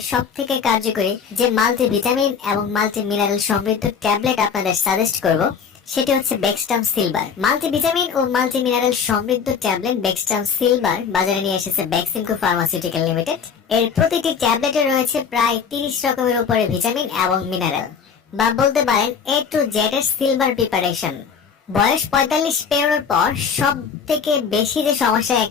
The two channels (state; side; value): quieter; right; 6.5 dB